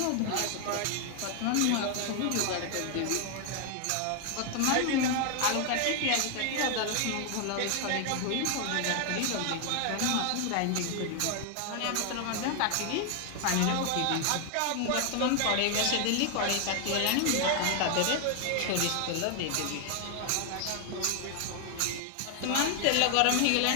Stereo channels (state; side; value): different; both; correlation 0.00